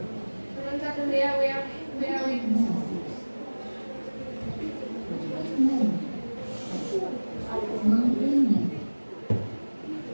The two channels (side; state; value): both; inverted; correlation -1.00